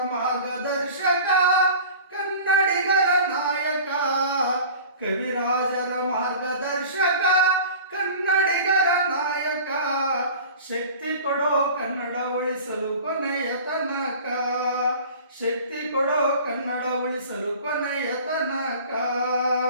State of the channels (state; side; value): inverted; both; correlation -0.41